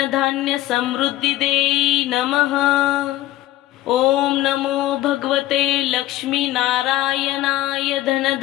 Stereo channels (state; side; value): quieter; right; 15.4 dB